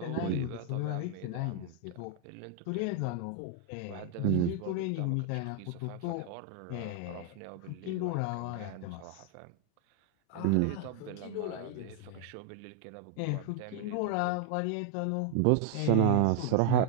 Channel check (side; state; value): both; different; correlation 0.00